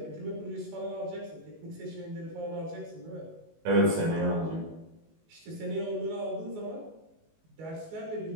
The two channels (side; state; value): left; late; 19 ms